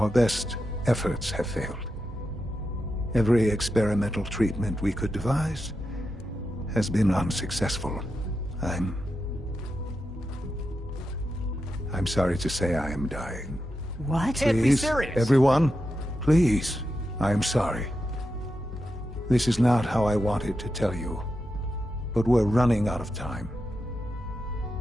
best efforts have failed. Every experimental treatment we could devise has been unsuccessful. I'm sorry to say I am dying. What? Can't be serious. Everyone, please. I am sorry. This is not how I wanted to tell you, but we're running out of time.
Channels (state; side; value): normal; both; correlation 0.88